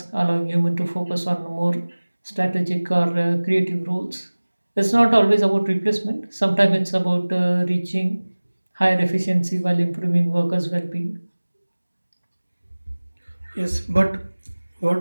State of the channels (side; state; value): both; inverted; correlation -1.00